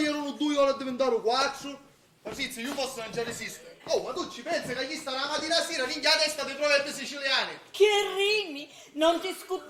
2 ore a diventare 4. Patrizia, io posso non ci resisto. Oh, ma tu ci pensi che gli sta la mattina sera ringhia la testa dei proverbi siciliani? Che rimi? Non ti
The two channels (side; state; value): both; identical; correlation 1.00